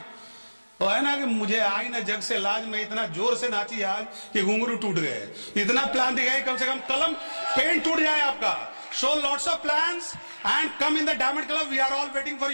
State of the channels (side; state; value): both; inverted; correlation -1.00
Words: तो है ना कि मुझे आई ना जग से लाज में इतना जोर से नाची आज कि घुंघरू टूट गए। इतना प्लान दिखाइए, कम से कम कलम पेन टूट जाए आपका। Show lots of plans and come in the diamond club. We are all waiting for